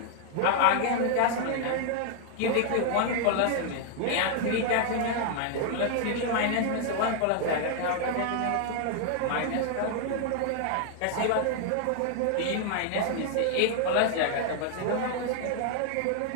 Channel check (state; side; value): different; both; correlation 0.00